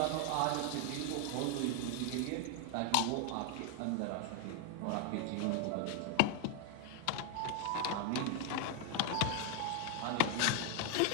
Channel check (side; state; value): both; different; correlation 0.00